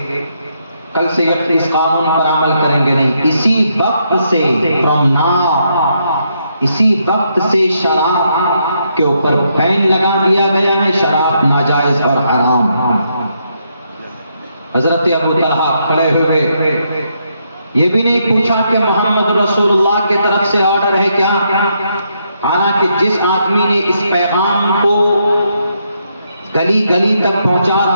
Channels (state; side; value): inverted; both; correlation -0.77